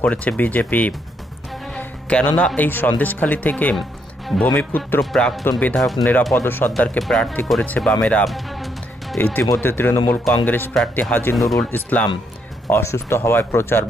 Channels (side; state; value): both; normal; correlation 0.75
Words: করেছে বিজেপি। কেননা এই সন্দেশখালী থেকে ভূমিপুত্র প্রাক্তন বিধায়ক নিরাপদ সর্দারকে প্রার্থী করেছে বামেরা। ইতিমধ্যে তৃণমূল কংগ্রেস প্রার্থী হাজী নুরুল ইসলাম অসুস্থ হওয়ায় প্রচার